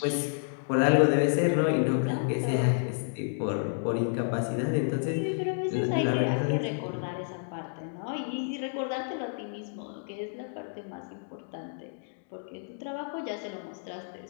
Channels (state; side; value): silent; right; digital silence